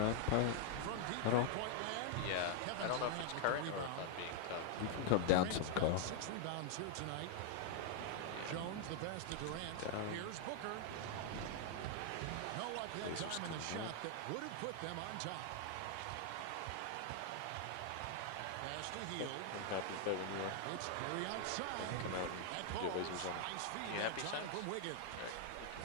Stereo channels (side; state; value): both; different; correlation 0.00